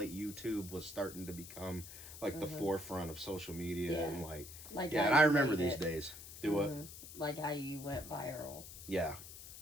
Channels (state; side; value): noise; left; hiss, 13 dB below the sound